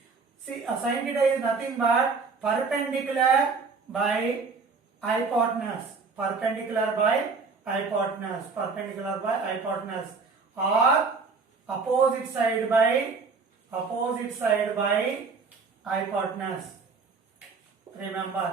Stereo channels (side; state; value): left; quieter; 4.6 dB